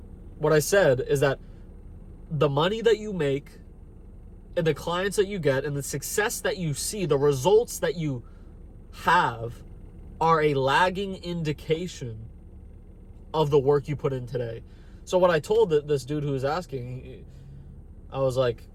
what I said, is that the money that you make and the clients that you get and the success that you see, the results that you have, are a lagging indication of the work you put in today. So what I told this dude who was asking, I was like,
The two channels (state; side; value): identical; both; correlation 1.00